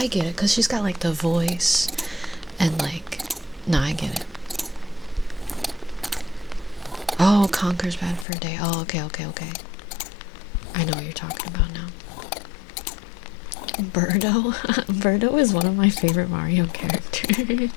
get it because she's got like the voice and like, nah, I get it. Oh, Conker's bad for a day. Oh, okay. I know what you're talking about now. Birdo? Birdo is one of my favorite Mario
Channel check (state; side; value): drops out; right; at 8.2 s